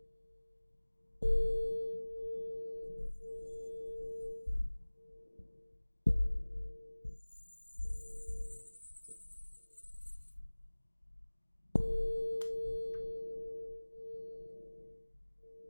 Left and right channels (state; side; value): inverted; both; correlation -1.00